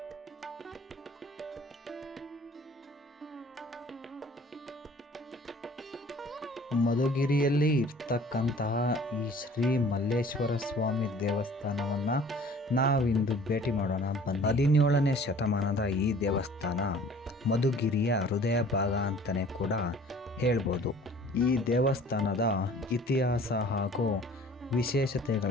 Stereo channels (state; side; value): normal; both; correlation 0.50